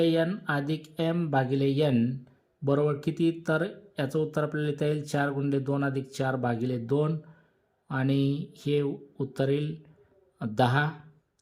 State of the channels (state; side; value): identical; both; correlation 1.00